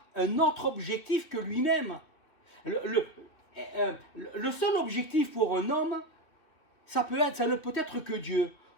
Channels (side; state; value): right; late; 3.0 ms